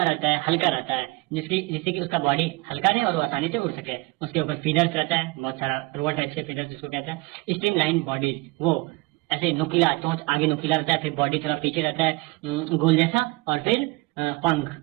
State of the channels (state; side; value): quieter; left; 24.6 dB